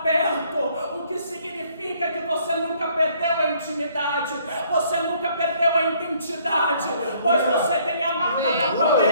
perto. O que significa que você nunca perdeu a intimidade. Você nunca perdeu a identidade. Pois você tem a marca da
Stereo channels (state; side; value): inverted; both; correlation -0.63